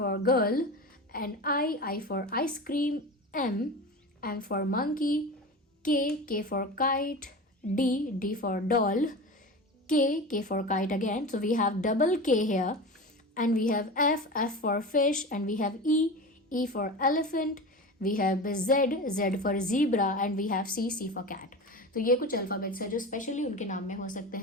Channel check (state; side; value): normal; both; correlation 0.29